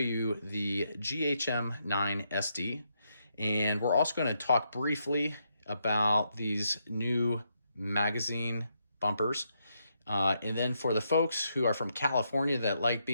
the GHM9 SD, and we're also going to talk briefly about these new magazine bumpers. And then for the folks who are from California that like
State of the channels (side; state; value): both; inverted; correlation -0.79